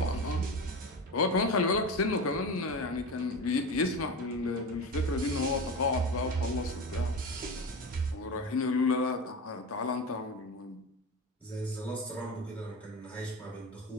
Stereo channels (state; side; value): normal; both; correlation 0.26